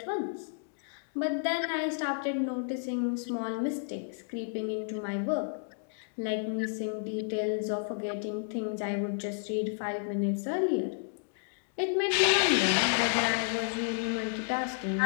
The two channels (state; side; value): silent; right; digital silence